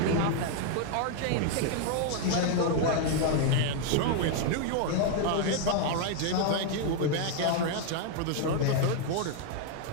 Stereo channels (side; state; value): both; different; correlation 0.00